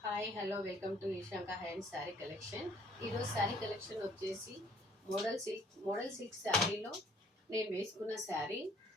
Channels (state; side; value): normal; both; correlation 0.59